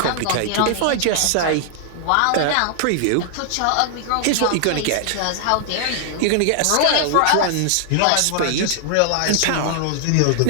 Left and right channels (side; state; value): both; different; correlation 0.00